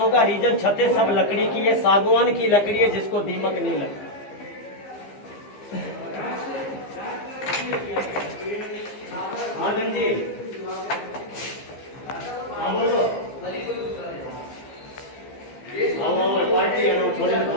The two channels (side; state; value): right; late; 15 ms